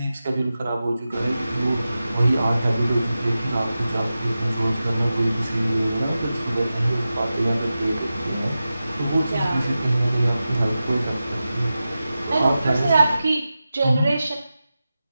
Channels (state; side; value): inverted; both; correlation -0.93